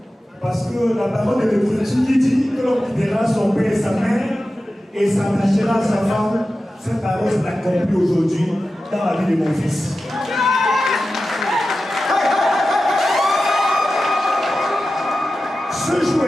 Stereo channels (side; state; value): both; normal; correlation 0.93